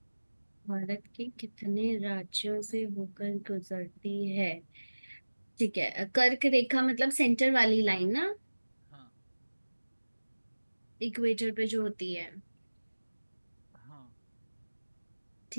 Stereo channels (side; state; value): both; inverted; correlation -1.00